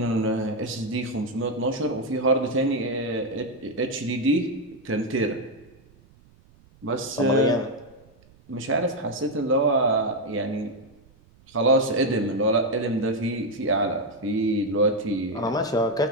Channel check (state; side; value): noise; right; rumble, 29 dB below the sound